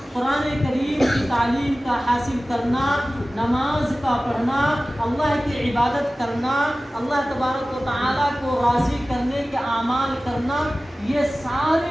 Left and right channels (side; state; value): both; normal; correlation 0.96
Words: قرآن کریم کی تعلیم کا حاصل کرنا، نماز کا پڑھنا، اللہ کی عبادت کرنا، اللہ تبارک و تعالیٰ کو راضی کرنے کے اعمال کرنا، یہ